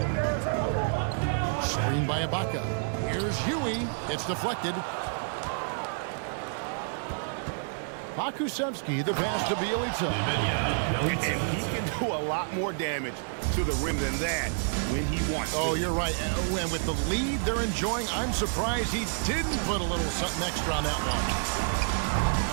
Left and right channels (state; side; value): silent; left; digital silence